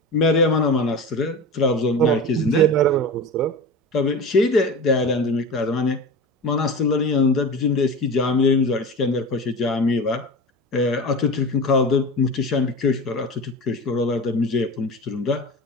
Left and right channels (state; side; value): normal; both; correlation 0.29